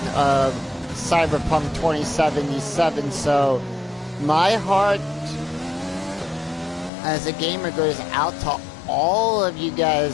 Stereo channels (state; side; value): drops out; right; at 6.9 s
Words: of Cyberpunk 2077, so my heart as a gamer goes out to all of you